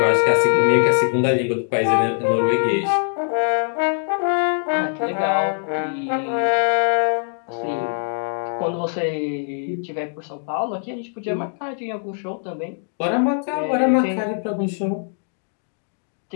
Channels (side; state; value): right; silent; digital silence